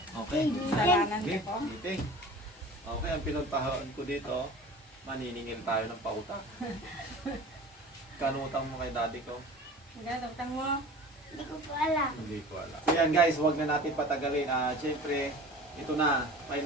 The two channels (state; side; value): normal; both; correlation 0.40